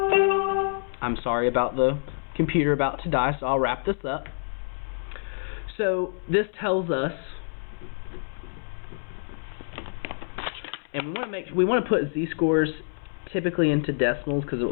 sorry about the computer about to die, so I'll wrap this up. So this tells us, and we want to put z-scores typically into decimals because it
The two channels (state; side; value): silent; right; 60 dB below the other